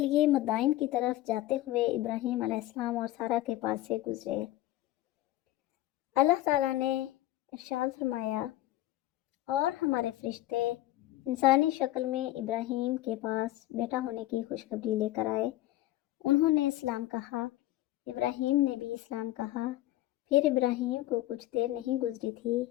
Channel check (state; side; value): quieter; right; 15.7 dB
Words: مدائن کی طرف جاتے ہوئے ابراہیم علیہ السلام اور سارہ کے پاس سے گزرے۔ اللہ تعالیٰ نے ارشاد فرمایا، اور ہمارے فرشتے انسانی شکل میں ابراہیم کے پاس بیٹا ہونے کی خوشخبری لے کر آئے۔ انہوں نے اسلام کہا، ابراہیم نے بھی اسلام کہا۔ پھر ابراہیم کو کچھ دیر نہیں گزری تھی